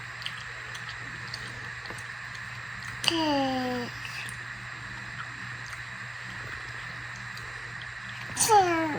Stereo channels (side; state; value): both; normal; correlation 0.97